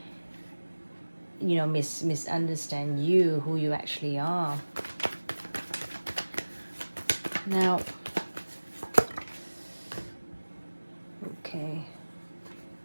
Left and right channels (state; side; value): inverted; both; correlation -1.00